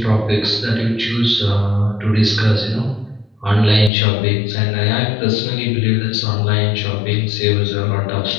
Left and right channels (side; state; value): right; drops out; at 3.9 s